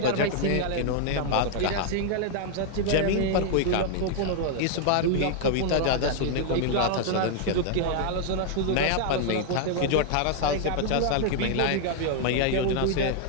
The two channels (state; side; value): different; both; correlation 0.00